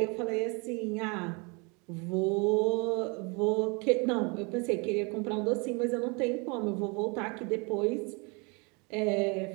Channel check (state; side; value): quieter; left; 30.6 dB